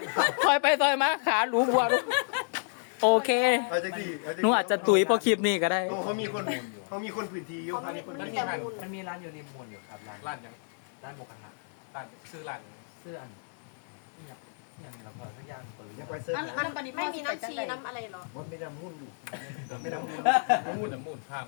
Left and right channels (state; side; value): silent; right; digital silence